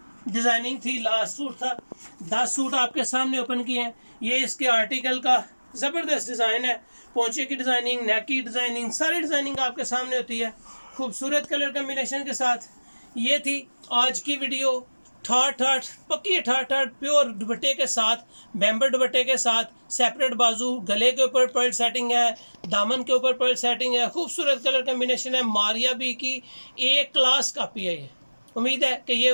डिज़ाइनिंग थी, लास्ट सूट था। 10 सूट आपके सामने ओपन किए हैं। ये इसके आर्टिकल का ज़बरदस्त डिज़ाइन है, पोंचे की डिज़ाइनिंग, नेक की डिज़ाइनिंग, सारी डिज़ाइनिंग आपके सामने होती है खूबसूरत कलर कम्बिनेशन के साथ। ये थी आज की वीडियो, ठाठ पक्की ठाठ प्योर दुपट्टे के साथ, बैम्बर दुपट्टे के साथ, सेपरेट बाजू, गले के ऊपर पर्ल सेटिंग है, दामन के ऊपर पर्ल सेटिंग है, खूबसूरत कलर कम्बिनेशन है। मारिया बी की एक क्लास कापी है ये। उम्मीद है कि ये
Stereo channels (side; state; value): both; inverted; correlation -1.00